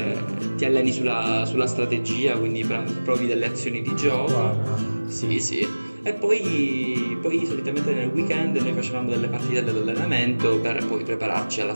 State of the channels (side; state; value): both; inverted; correlation -1.00